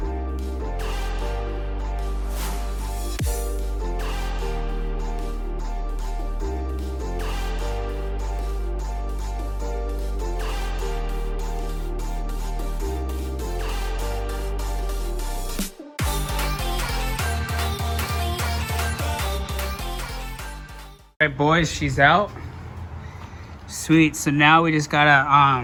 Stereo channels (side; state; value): both; identical; correlation 1.00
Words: All right, boys, she's out. Sweet. So now we just